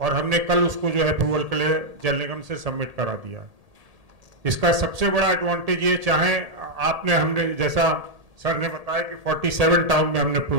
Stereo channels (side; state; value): left; late; 1.7 ms